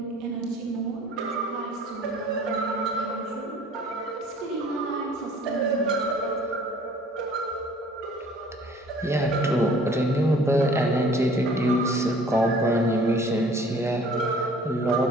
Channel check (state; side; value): normal; both; correlation 0.52